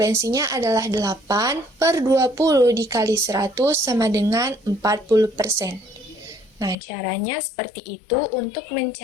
adalah 8/20 dikali 100 sama dengan 40%. Nah, caranya seperti itu untuk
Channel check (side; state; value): right; drops out; at 6.8 s